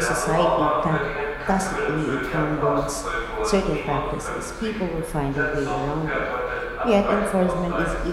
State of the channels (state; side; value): identical; both; correlation 1.00